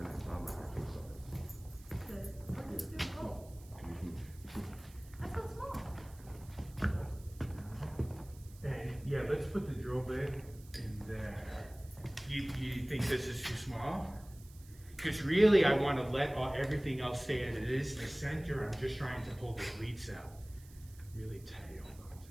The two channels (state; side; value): noise; right; hiss, 23 dB below the sound